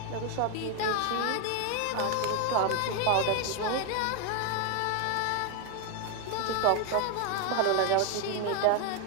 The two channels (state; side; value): different; both; correlation 0.01